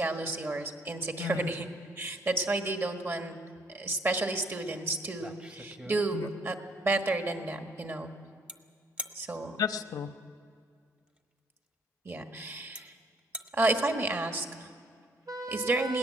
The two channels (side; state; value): both; normal; correlation 0.64